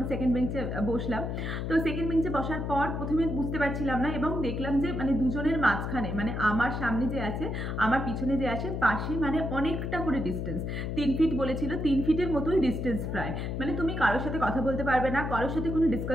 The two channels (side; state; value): left; noise; hum, 3 dB below the sound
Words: সেকেন্ড বেঞ্চে বসলাম। তো সেকেন্ড বেঞ্চে বসার পর প্রথমে বুঝতে পারছিলাম না এবং দেখলাম যে মানে দুজনের মাঝখানে, মানে আমার সামনে যে আছে আমার পিছনে যে আছে পাশে, মানে অনেকটা করে ডিস্টেন্স, 3 ফিট বলেছিল, 3 ফিটের মতোই ডিস্টেন্স প্রায়। মানে তুমি কারোর সাথে কথা বলতে পারবে না, কারোর সাথে কোনো